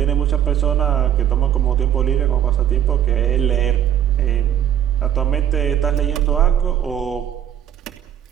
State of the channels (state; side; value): quieter; left; 10.2 dB